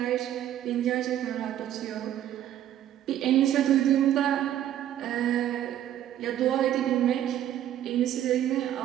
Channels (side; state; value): left; quieter; 11.6 dB